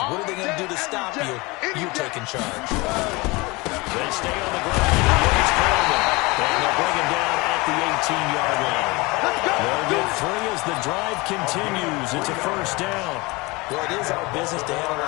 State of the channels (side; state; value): right; quieter; 24.4 dB